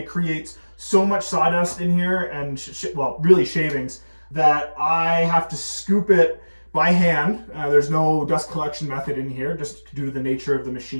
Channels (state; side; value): inverted; both; correlation -1.00